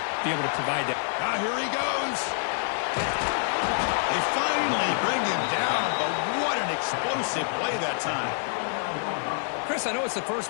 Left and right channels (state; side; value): silent; right; digital silence